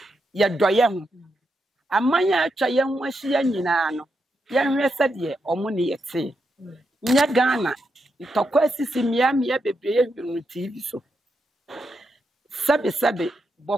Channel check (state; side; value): normal; both; correlation 0.84